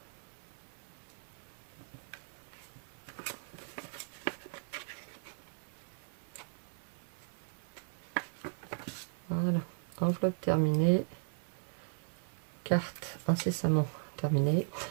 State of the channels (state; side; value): silent; left; 53 dB below the other